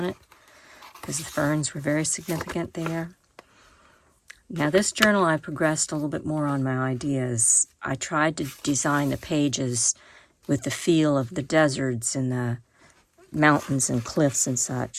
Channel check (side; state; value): both; identical; correlation 1.00